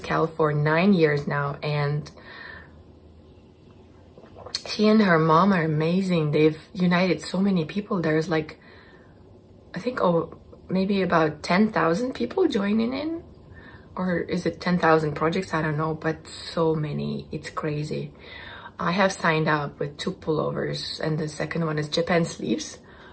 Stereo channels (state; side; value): identical; both; correlation 1.00